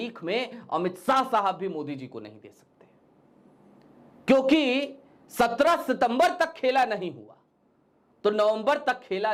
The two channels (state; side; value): identical; both; correlation 1.00